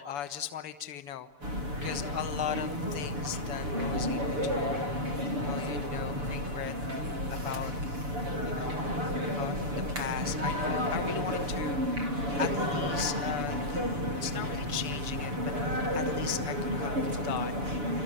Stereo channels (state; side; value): late; left; 6.9 ms